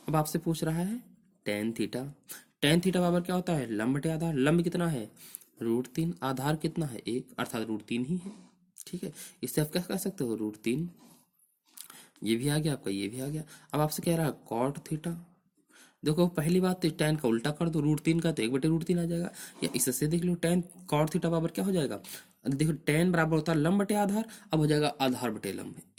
अब आपसे पूछ रहा है टेन थीटा। टेन थीटा बराबर क्या होता है? लंब बटे आधार। लंब कितना है? √3, आधार कितना है? 1, अर्थात √3 ही है। ठीक है, इससे आप क्या कह सकते हो? √3। ये भी आ गया आपका, ये भी आ गया। अब आपसे कह रहा है कॉट थीटा। देखो पहली बात तो टेन का उल्टा कर दो, √3 का तो 1/√3 आ जाएगा। या इससे देख लो टेन कॉट थीटा बराबर क्या हो जाएगा? देखो टेन बराबर होता है लंब बटे आधार, अब हो जाएगा आधार बटे लंब,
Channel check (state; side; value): identical; both; correlation 1.00